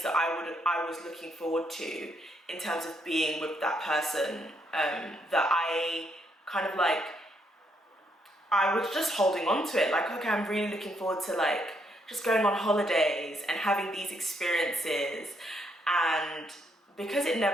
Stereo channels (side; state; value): both; normal; correlation 0.75